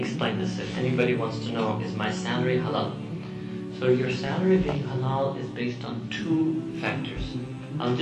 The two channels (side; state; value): both; identical; correlation 1.00